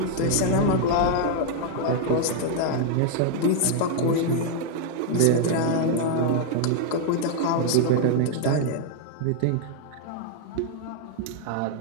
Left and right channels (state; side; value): different; both; correlation 0.00